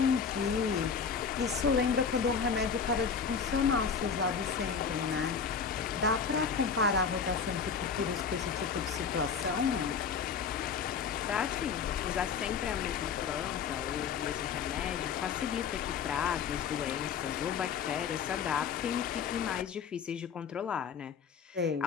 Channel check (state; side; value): quieter; right; 6.3 dB